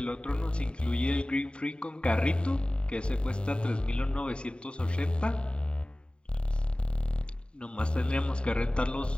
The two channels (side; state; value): right; late; 0.053 ms